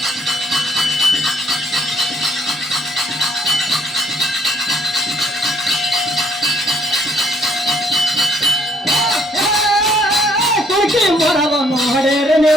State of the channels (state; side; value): normal; both; correlation 0.64